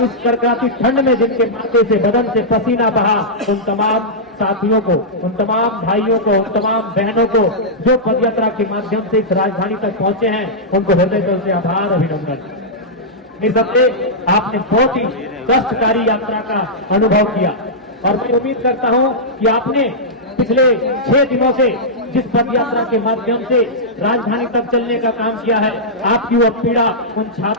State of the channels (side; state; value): both; normal; correlation -0.11